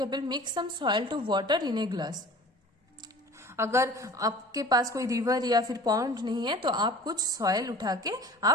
mix some soil to water in a glass. अगर आपके पास कोई रिवर या फिर पॉन्ड नहीं है तो आप कुछ सॉइल उठा के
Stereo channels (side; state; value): both; normal; correlation 0.44